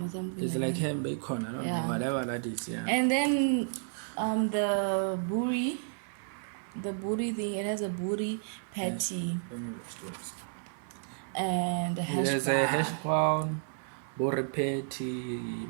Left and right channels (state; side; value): silent; left; 57 dB below the other